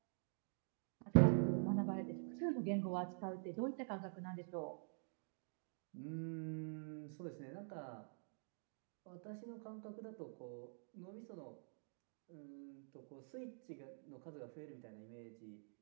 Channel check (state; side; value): silent; left; digital silence